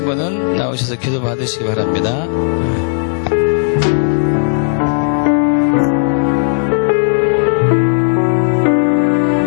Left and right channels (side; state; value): right; silent; digital silence